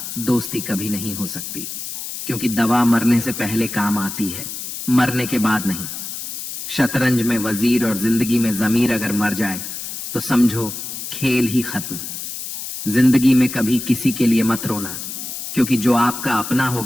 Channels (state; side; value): noise; left; hiss, 7 dB below the sound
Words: दोस्ती कभी नहीं हो सकती, क्योंकि दवा मरने से पहले काम आती है, मरने के बाद नहीं। शतरंज में वजीर और जिंदगी में जमीर अगर मर जाए तो समझो खेल ही खत्म। जिंदगी में कभी किसी के लिए मत रोना, क्योंकि जो आपका अपना